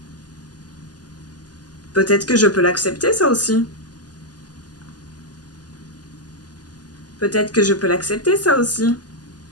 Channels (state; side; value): late; right; 0.69 ms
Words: Peut-être que je peux l'accepter, ça aussi. Peut-être que je peux l'accepter, ça aussi.